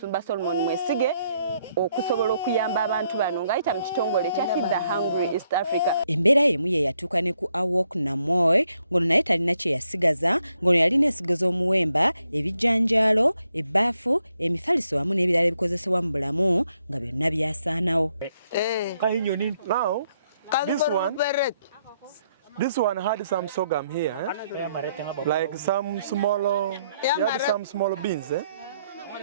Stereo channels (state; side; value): inverted; both; correlation -0.75